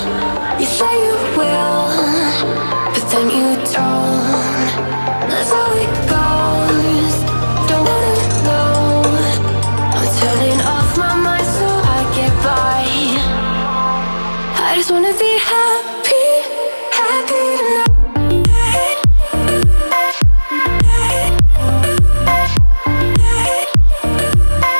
You say you will, but then you don't. That's how it goes. Don't wanna know. I'm turning off my mind so I get by. I just wanna be happy, happy tonight.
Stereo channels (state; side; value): inverted; both; correlation -1.00